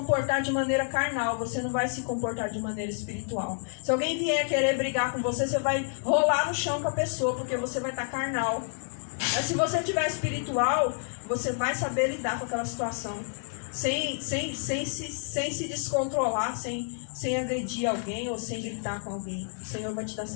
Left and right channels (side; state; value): right; silent; 59 dB below the other